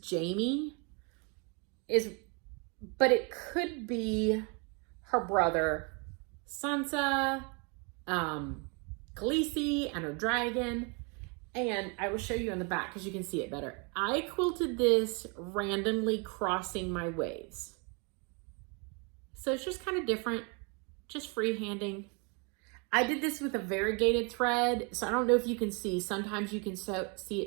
Jaime, but it could be her brother, Sansa, Khaleesi, and her dragon. And I will show you on the back because you can see it better. I quilted this randomly crossing my waves. So it's just kind of different, just freehanding. I did this with a variegated thread, so I don't know if you can see. Sometimes you can see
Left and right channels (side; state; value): left; quieter; 33.5 dB